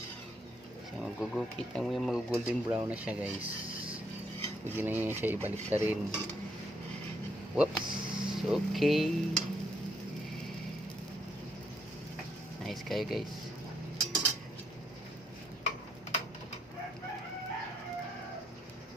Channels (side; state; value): both; normal; correlation 0.73